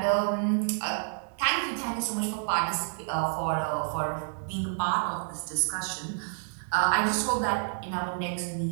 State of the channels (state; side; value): silent; left; digital silence